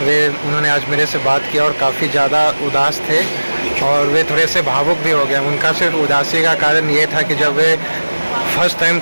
उन्होंने आज मेरे से बात किया और काफ़ी ज़्यादा उदास थे और वे थोड़े से भावुक भी हो गए। उनका सिर्फ उदासी का कारण ये था कि जब वे फर्स्ट टाइम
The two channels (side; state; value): both; inverted; correlation -1.00